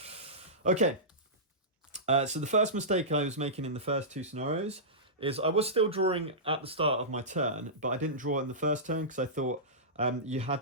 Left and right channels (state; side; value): normal; both; correlation -0.17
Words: Okay, so the first mistake I was making in the first 2 scenarios is I was still drawing at the start of my turn, but I didn't draw in the first turn because I thought you